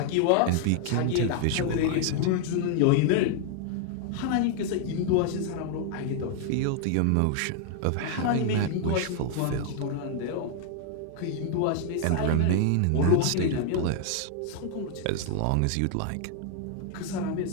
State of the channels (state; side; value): different; both; correlation 0.00